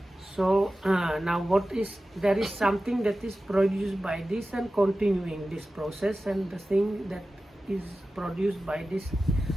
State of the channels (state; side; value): normal; both; correlation 0.95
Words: So now there is something that is produced by this and continuing this process, and the thing that is produced by this